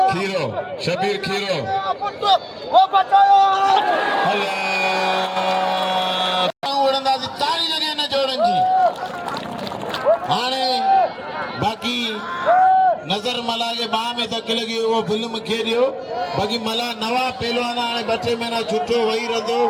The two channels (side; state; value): both; identical; correlation 1.00